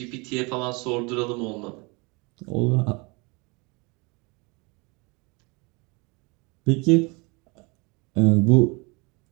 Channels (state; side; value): quieter; left; 28.6 dB